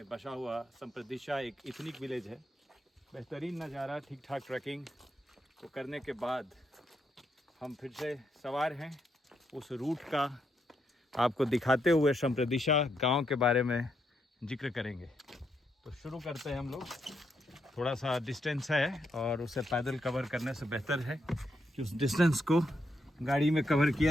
बसा हुआ संप्रदिशा एक इथनिक विलेज है। बेहतरीन नज़ारा, ठीक ठाक ट्रैकिंग को करने के बाद हम फिर से सवार हैं। उस रूट का आपको दिखाते हुए संप्रदिशा गांव के बारे में जिक्र करेंगे। तो शुरू करते हैं हम लोग। थोड़ा सा डिस्टेंस है और उसे पैदल कवर करने से बेहतर है कि उस डिस्टेंस को गाड़ी में कवर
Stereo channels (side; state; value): both; normal; correlation 0.79